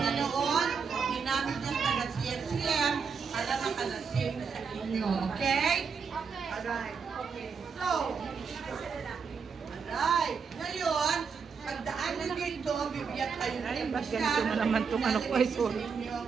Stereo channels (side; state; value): left; quieter; 5.8 dB